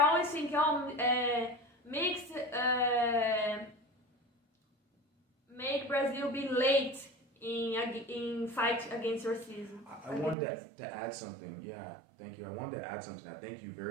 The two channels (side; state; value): left; drops out; at 10.4 s